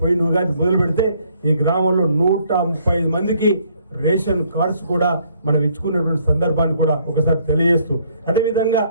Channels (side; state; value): both; inverted; correlation -0.66